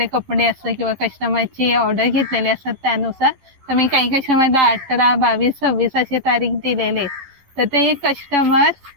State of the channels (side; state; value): left; late; 11 ms